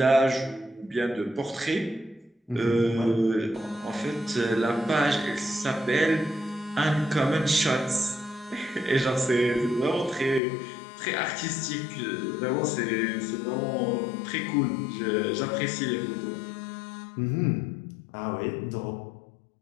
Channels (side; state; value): right; drops out; at 10.4 s